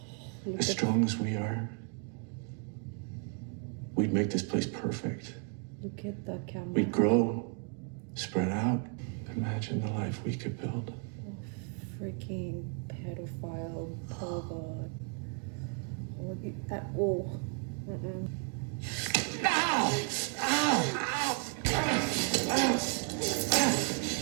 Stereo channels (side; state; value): left; quieter; 37.1 dB